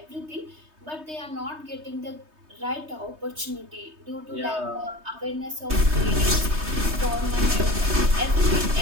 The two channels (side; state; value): left; late; 3.2 ms